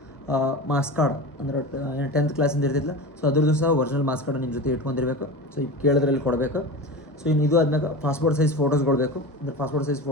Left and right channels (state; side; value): normal; both; correlation 0.28